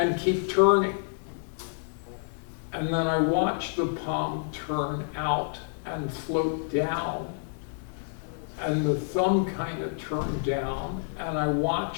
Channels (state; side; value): silent; right; digital silence